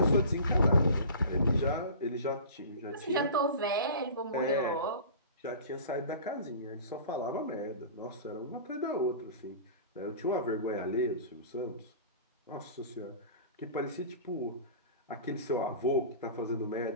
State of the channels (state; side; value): inverted; both; correlation -0.39